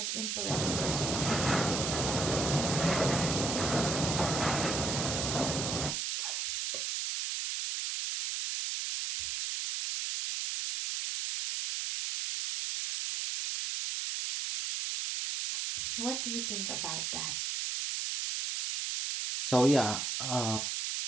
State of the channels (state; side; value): noise; right; hiss, 1 dB below the sound